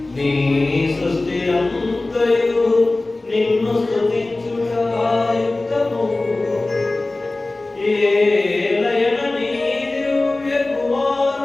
నీ సృష్టి అంతయు నిన్ను స్తుతించుట యుక్తము. ఏలయన నీ దివ్య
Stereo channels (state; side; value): quieter; right; 3.0 dB